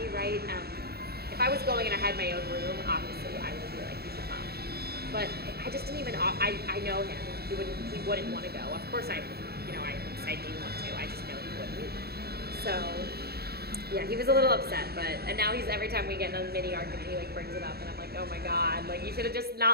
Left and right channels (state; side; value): late; left; 0.46 ms